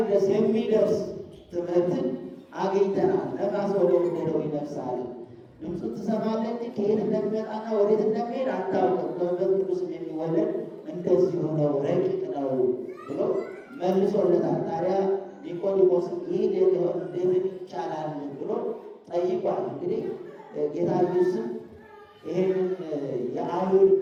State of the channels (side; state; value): both; identical; correlation 1.00